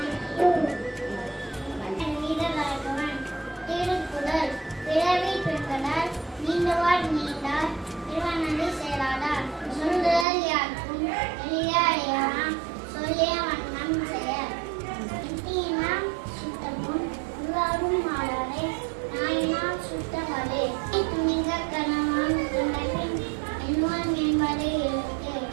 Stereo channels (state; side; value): drops out; left; at 10.2 s